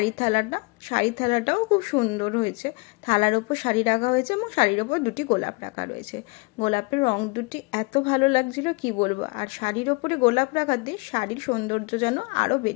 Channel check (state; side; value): quieter; right; 28.2 dB